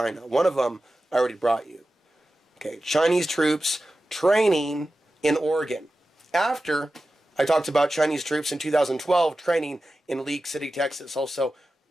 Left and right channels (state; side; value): normal; both; correlation 0.94